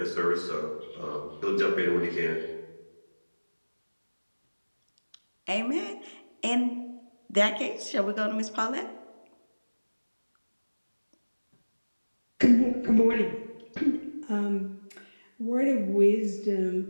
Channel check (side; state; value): both; inverted; correlation -1.00